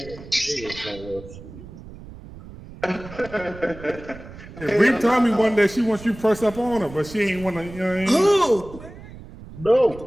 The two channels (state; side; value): noise; right; rumble, 16 dB below the sound